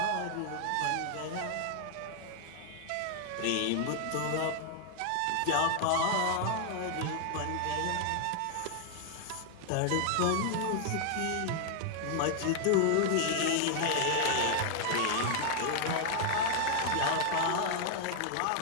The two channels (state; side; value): different; both; correlation 0.00